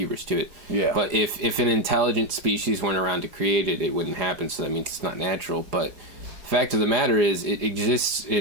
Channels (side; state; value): left; late; 4.9 ms